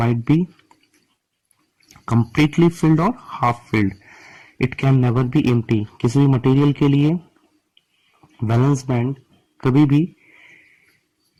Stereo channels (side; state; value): both; identical; correlation 1.00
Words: be completely filled और half filled. It can never be empty. किसी भी मटेरियल के लिए वैलेंस बैंड कभी भी